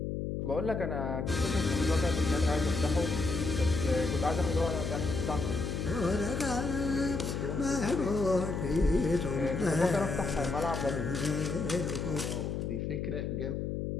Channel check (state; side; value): noise; left; hum, 2 dB below the sound